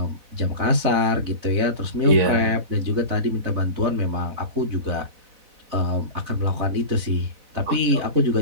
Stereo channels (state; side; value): late; left; 4.0 ms